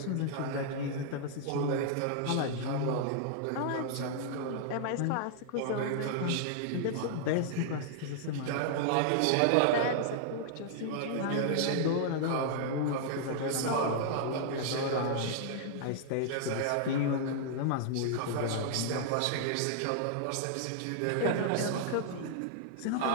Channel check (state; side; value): different; both; correlation -0.01